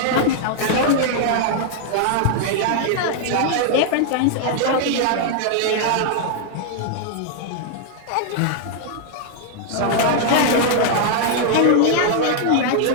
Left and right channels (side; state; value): both; different; correlation 0.00